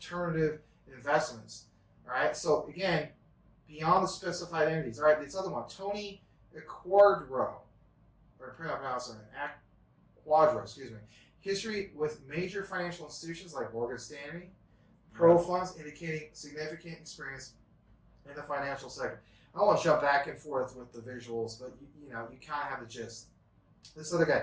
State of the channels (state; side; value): identical; both; correlation 1.00